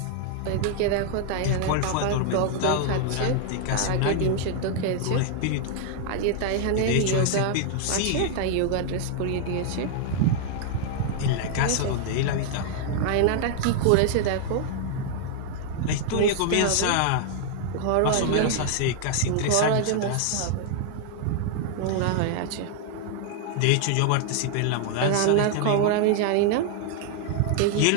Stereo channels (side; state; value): both; different; correlation 0.00